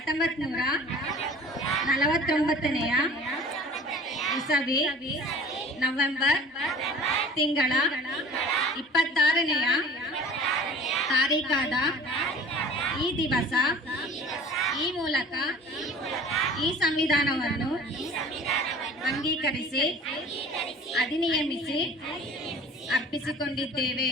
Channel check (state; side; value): normal; both; correlation 0.44